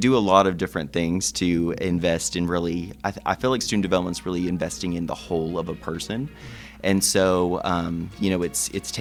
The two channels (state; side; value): identical; both; correlation 1.00